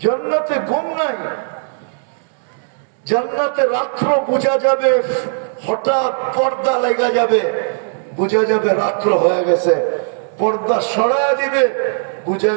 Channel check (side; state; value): left; silent; digital silence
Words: জান্নাতে ঘুম নাই। জান্নাতে রাত্র বোঝা যাবে, হঠাৎ পর্দা লেগে যাবে, বোঝা যাবে রাত্র হয়ে গেছে। পর্দা সরায় দিবে, বোঝা